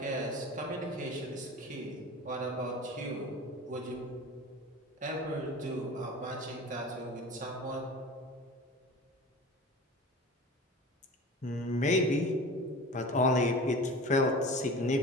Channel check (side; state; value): both; normal; correlation 0.36